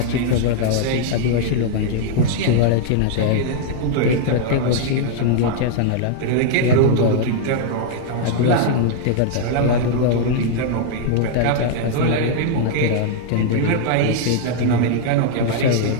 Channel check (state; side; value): different; both; correlation -0.01